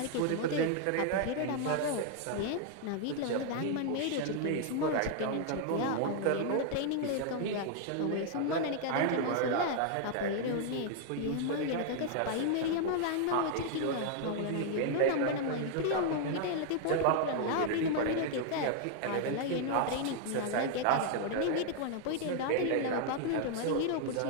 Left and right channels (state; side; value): different; both; correlation 0.00